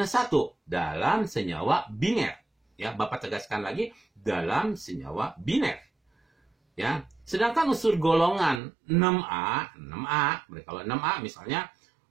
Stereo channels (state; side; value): drops out; left; at 8.6 s